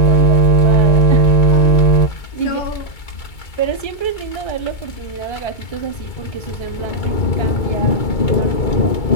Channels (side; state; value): right; late; 2.3 ms